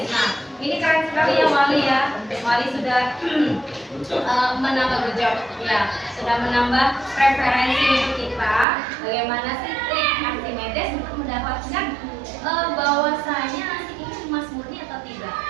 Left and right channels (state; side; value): drops out; left; at 8.7 s